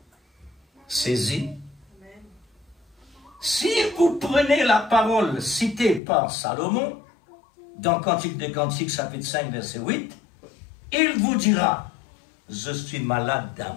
saisir. Si vous prenez la parole citée par Salomon, dans Cantique des Cantiques, chapitre 5, verset 8, il vous dira, je suis malade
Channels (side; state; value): right; drops out; at 6.0 s